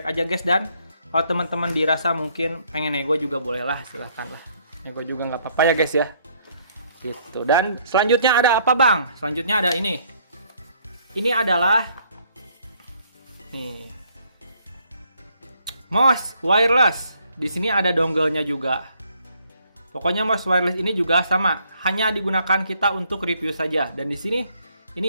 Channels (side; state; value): both; inverted; correlation -0.66